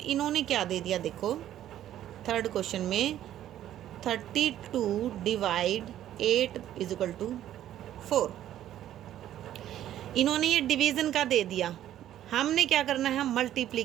क्या दे दिया, देखो थर्ड क्वेश्चन में 32 / 8 = 4, इन्होंने ये डिवीज़न का दे दिया। हमने क्या करना है?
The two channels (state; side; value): quieter; left; 12.0 dB